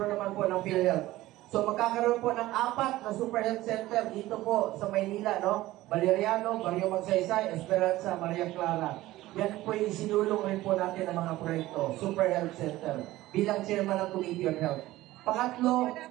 naman po ng PhilHealth. So magkakaroon po ng 4 na Super Health Center dito po sa Maynila, no? Valeriano, Barrio Magsaysay, Esperanza, Maria Clara. Yan po yung sinulong rin po natin ng mga proyekto, Super Health Center, bilang chairman ng Committee on Health. Pangatlo,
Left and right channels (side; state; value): left; quieter; 16.7 dB